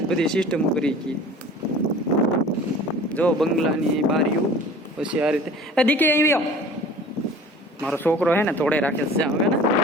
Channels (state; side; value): normal; both; correlation 0.44